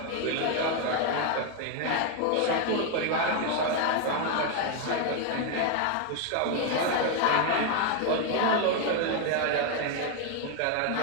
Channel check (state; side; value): different; both; correlation 0.01